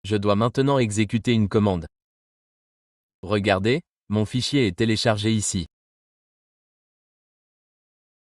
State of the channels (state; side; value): identical; both; correlation 1.00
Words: Je dois maintenant exécuter une commande. Regardez, mon fichier est téléchargé ici.